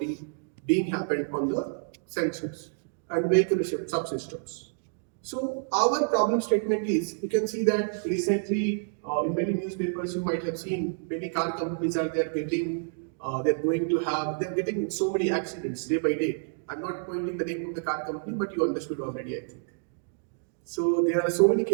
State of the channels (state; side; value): silent; left; digital silence